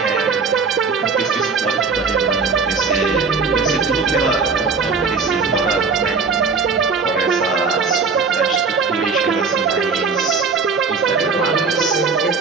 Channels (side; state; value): left; quieter; 4.9 dB